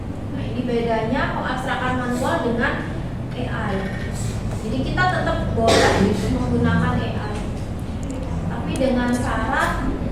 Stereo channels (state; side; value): identical; both; correlation 1.00